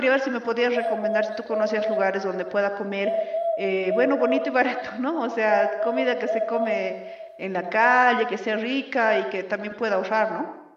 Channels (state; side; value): identical; both; correlation 1.00